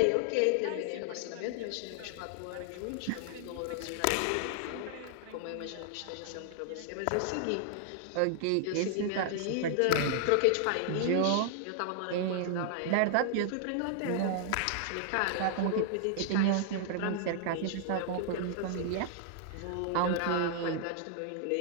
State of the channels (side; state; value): both; different; correlation 0.00